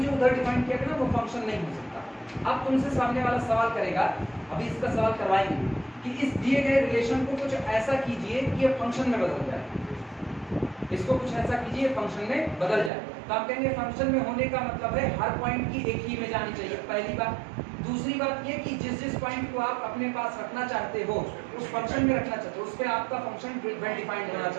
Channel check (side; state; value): left; drops out; at 12.9 s